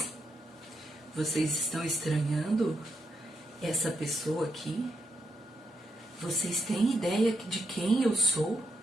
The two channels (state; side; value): normal; both; correlation 0.81